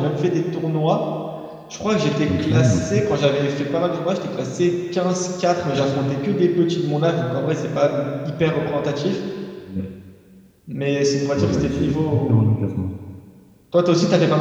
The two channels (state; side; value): identical; both; correlation 1.00